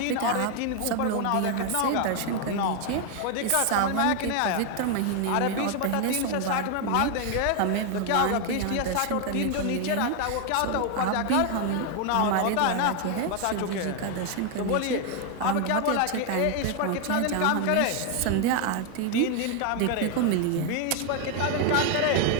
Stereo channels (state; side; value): different; both; correlation 0.01